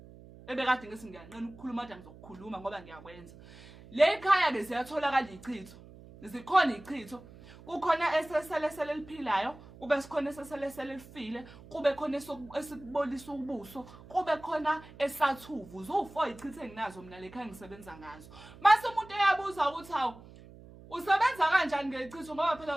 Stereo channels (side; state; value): right; noise; hum, 19 dB below the sound